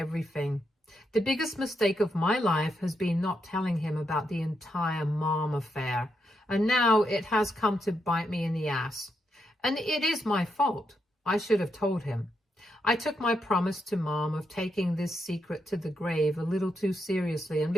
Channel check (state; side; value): normal; both; correlation 0.81